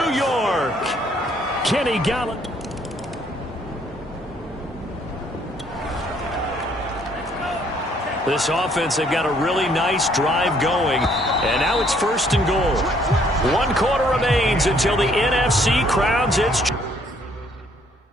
York. Kenny Galladay. This offense, they've got a really nice drive going. And now it's 1st and goal. 1 quarter remains until the NFC crowns its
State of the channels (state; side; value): normal; both; correlation 0.65